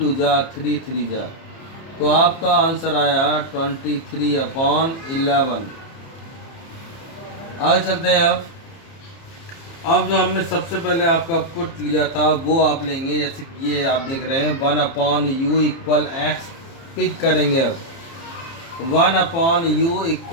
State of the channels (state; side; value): late; right; 30 ms